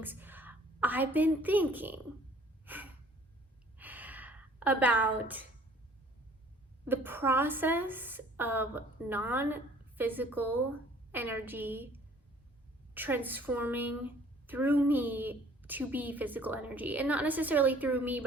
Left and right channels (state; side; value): normal; both; correlation 0.55